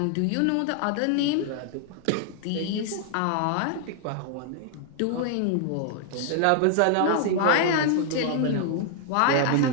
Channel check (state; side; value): different; both; correlation 0.00